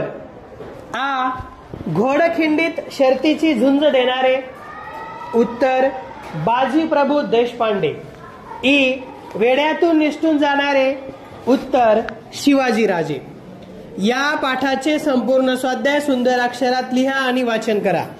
घोडखिंडीत शर्तीची झुंज देणारे. उत्तर बाजीप्रभू देशपांडे. ई वेड्यातून निसटून जाणारे. उत्तर शिवाजीराजे. या पाठाचे संपूर्ण स्वाध्याय सुंदर अक्षरात लिहा आणि वाचन करा.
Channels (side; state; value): both; identical; correlation 1.00